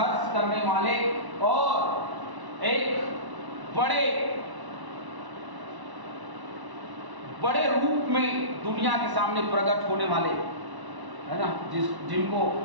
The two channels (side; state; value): left; late; 1.0 ms